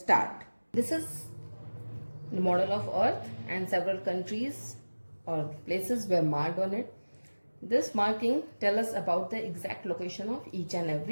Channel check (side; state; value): both; inverted; correlation -1.00